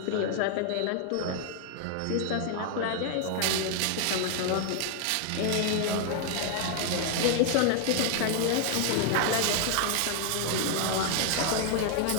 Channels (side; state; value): both; different; correlation 0.00